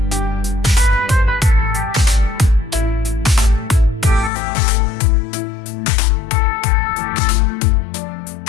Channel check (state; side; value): drops out; right; at 4.3 s